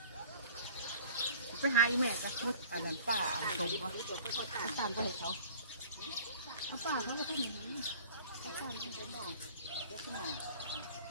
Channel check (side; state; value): both; inverted; correlation -0.47